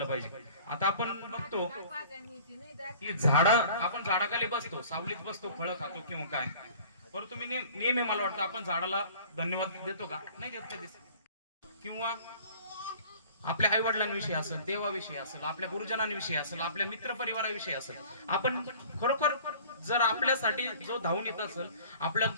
पाहिजे. आता आपण बघतो की आपण झाडाखाली बसतो, सावलीत बसतो, फळं खातो किंवा काय, परंतु मी नेहमी मला वाटतं आपण झाडाला धन्यवाद देतो का, नाही देत कधीच. किंवा आपल्या आई वडिलांविषयी असेल, देवाविषयी असेल, आपल्या गुरुजनांविषयी असेल, आपल्या मित्र परिवाराविषयी असेल, आपण खरोखर जर आपल्यासाठी जो धावून येत असेल, आपल्याला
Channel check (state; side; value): inverted; both; correlation -0.48